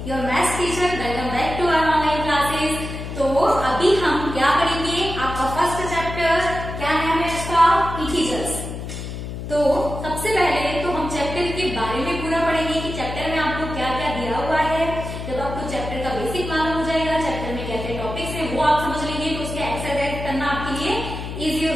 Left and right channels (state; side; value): noise; left; hum, 7 dB below the sound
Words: Your maths teacher. Welcome back to our online classes. तो अभी हम क्या करेंगे, आपका फर्स्ट चैप्टर क्या नाम है इसका, इंटीजर्स। तो सबसे पहले तो हम चैप्टर के बारे में पूरा पढ़ेंगे कि चैप्टर में आपको क्या क्या दिया हुआ है। जब आपको चैप्टर का बेसिक मालूम हो जाएगा, चैप्टर में क्या क्या टॉपिक्स है वो आप समझ लेंगे, तो उसके एक्सरसाइज करना आपके लिए इजी हो